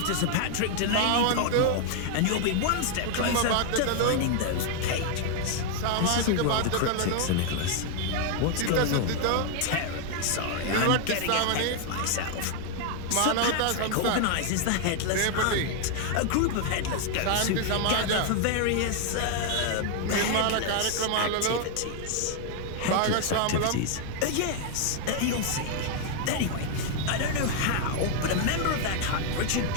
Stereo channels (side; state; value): both; different; correlation 0.00